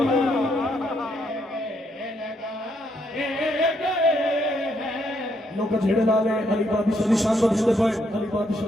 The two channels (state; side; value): normal; both; correlation 0.75